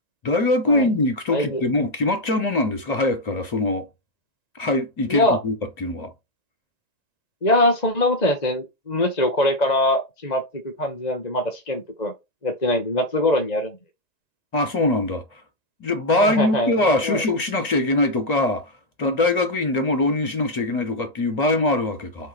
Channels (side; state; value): right; late; 2.4 ms